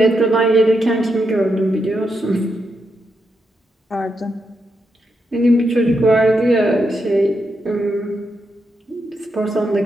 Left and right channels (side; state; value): both; normal; correlation 0.83